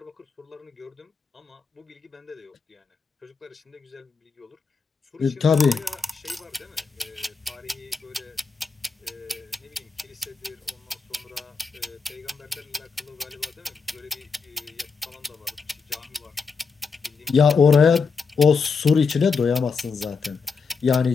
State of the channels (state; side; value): quieter; right; 5.1 dB